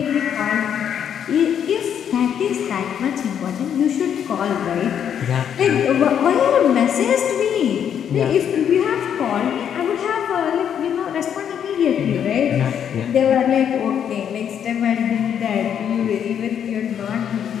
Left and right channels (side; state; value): right; quieter; 8.7 dB